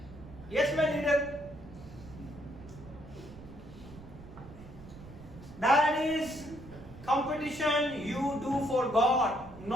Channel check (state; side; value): noise; right; rumble, 17 dB below the sound